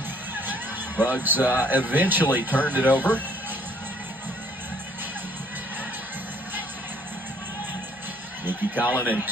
Bugs eventually turned it over. Nikki Collin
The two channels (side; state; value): both; normal; correlation 0.61